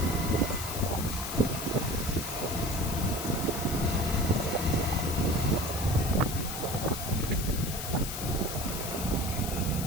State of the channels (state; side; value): noise; left; hiss, 6 dB below the sound